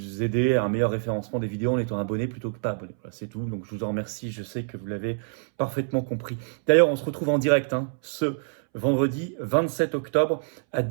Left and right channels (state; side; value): silent; left; 61 dB below the other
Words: aider à un meilleur référencement des vidéos en étant abonné plutôt que pas abonné. Voilà, c'est tout, donc je vous en remercie, je sais que vous l'avez parfaitement compris. D'ailleurs, on se retrouve en direct ce vendredi 27 octobre à